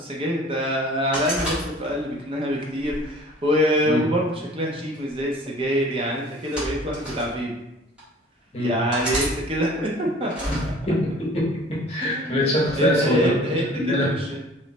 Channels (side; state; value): both; normal; correlation 0.48